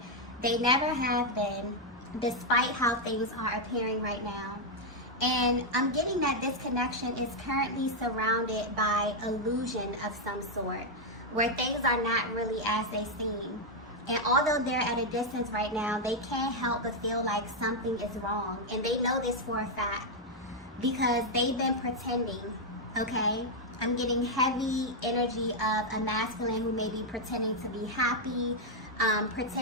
They never have been, despite how things are appearing right now. And I'm getting that this connection is currently surrounded by illusion of some sort, where things are not really as they seem. And although they're at a distance right now, they can't help but feel like something is wrong. And they know this for a fact, because they've been pretending, okay? I'm getting heavy energy of a masculine who may be pretending to be happy,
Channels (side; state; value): both; normal; correlation -0.01